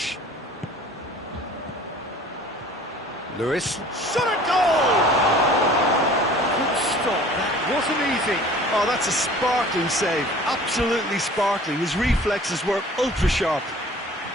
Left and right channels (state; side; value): normal; both; correlation 0.47